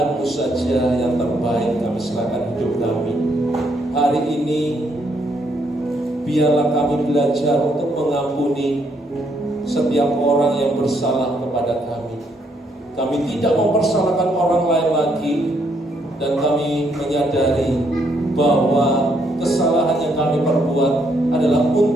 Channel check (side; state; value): both; normal; correlation 0.73